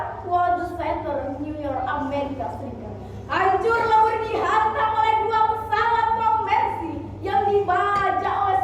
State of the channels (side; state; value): both; identical; correlation 1.00